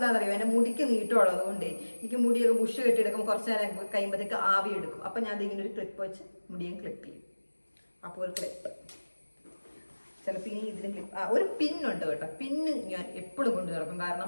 എൻ്റെ മുടിക്ക് നീട്ടമുള്ളത് കൊണ്ട് എനിക്ക് മുടിയൊക്കെ ബുഷ് കെട്ടിയെടുക്കുമ്പോൾ കുറച്ച് നേരം കഴിയുമ്പോഴത്തേക്ക് ആവി എടുക്കും. അപ്പം ഞാൻ അതിങ്ങനെ ഒരു ക്ലിപ്പ് വെച്ച് മുടിയും ക്ലിപ്പ് ചെയ്യും. അപ്പോൾ ഒരു ക്ലിപ്പ്. ചിലപ്പോൾ ഇനി ഇതിന് ക്ലിപ്പ് ഒരു പിന്നുണ്ട് കേട്ടോ. പിന്ന് ഞാൻ എപ്പോഴും കൊണ്ടു നടക്കും.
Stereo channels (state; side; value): inverted; both; correlation -1.00